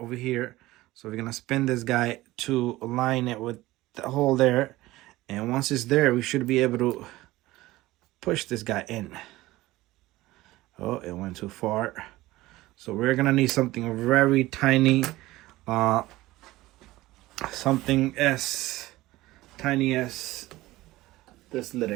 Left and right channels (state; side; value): quieter; left; 18.0 dB